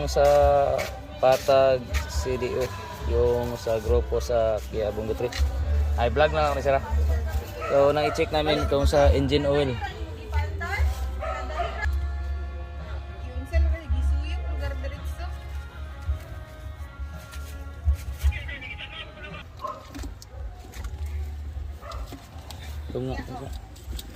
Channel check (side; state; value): both; identical; correlation 1.00